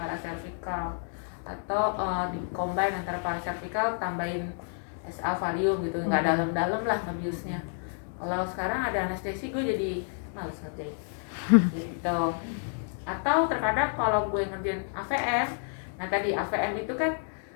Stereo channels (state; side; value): silent; right; 57 dB below the other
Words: atau di combine antara paracervical tambahin SA valium gitu, nggak dalam-dalam lah ngebiusnya. Kalau sekarang ada anestesi gue jadi males ngerjain gitu. Atau terkadang kalau gue ngerjain AVM, nah tadi AVM itu kan